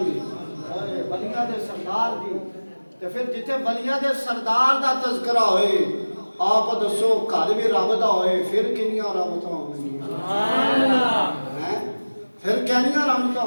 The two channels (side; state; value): both; inverted; correlation -1.00